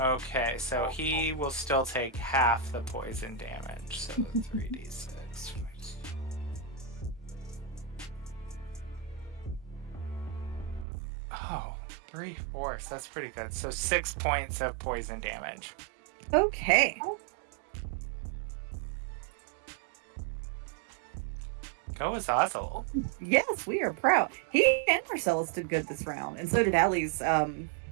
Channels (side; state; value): left; drops out; at 10.9 s